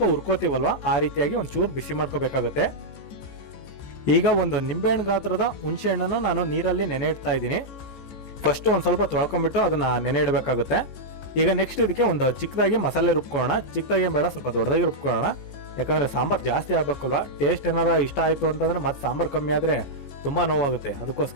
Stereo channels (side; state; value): right; late; 14 ms